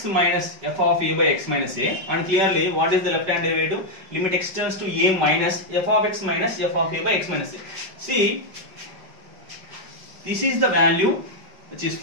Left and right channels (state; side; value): late; left; 5.2 ms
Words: minus f of a by x minus a, and clearly what is the left hand derivative? Limit x tends to a minus f of x minus f of a by x minus a. See, this is the value which is